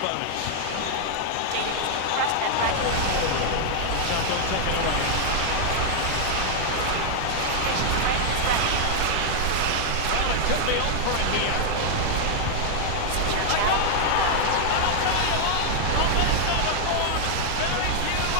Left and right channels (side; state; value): both; different; correlation -0.01